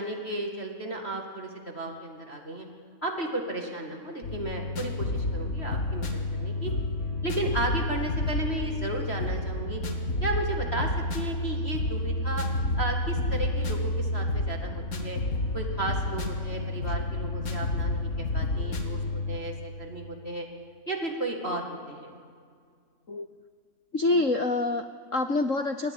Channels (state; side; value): late; right; 4.2 ms